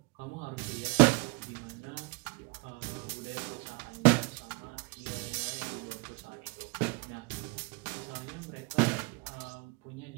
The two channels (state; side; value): quieter; left; 28.3 dB